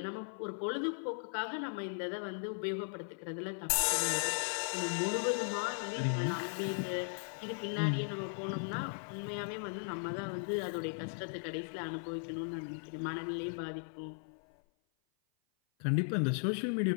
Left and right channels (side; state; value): right; silent; 53 dB below the other